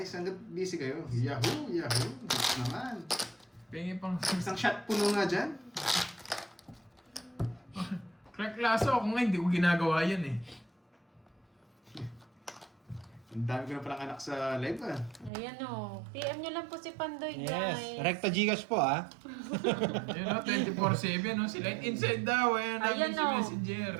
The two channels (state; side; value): drops out; left; at 15.3 s